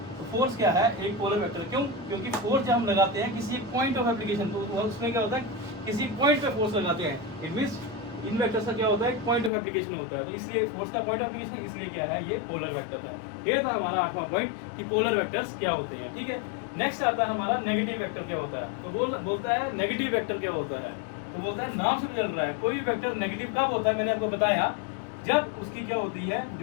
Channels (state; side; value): drops out; right; at 9.5 s